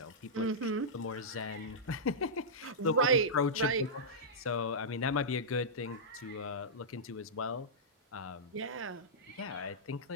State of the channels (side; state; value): both; normal; correlation -0.13